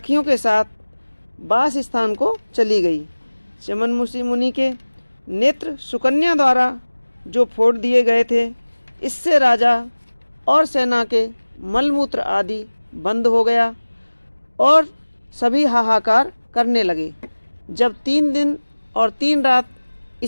के साथ वास स्थान को चली गई। चमन मुनि के नेत्र सुकन्या द्वारा जो फोड़ दिए गए थे, इससे राजा और सेना के मलमूत्र आदि बंद हो गया और सभी हाहाकार करने लगे। जब 3 दिन और 3 रात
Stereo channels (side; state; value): both; inverted; correlation -1.00